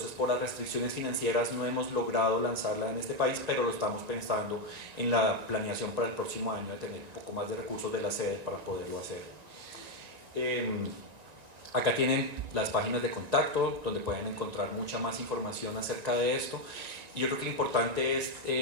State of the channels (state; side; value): late; left; 1.9 ms